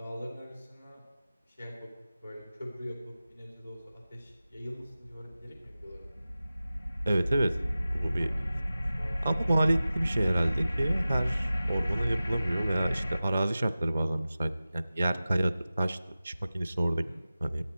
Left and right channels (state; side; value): inverted; both; correlation -0.95